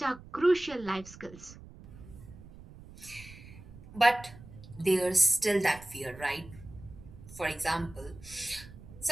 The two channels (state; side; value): noise; right; rumble, 18 dB below the sound